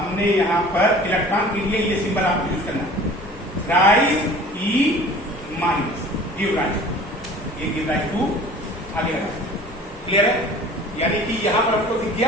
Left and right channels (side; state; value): both; normal; correlation 0.45